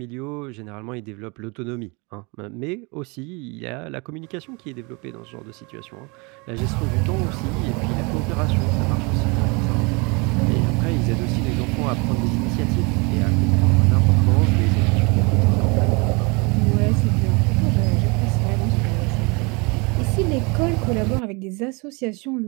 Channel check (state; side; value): quieter; left; 29.2 dB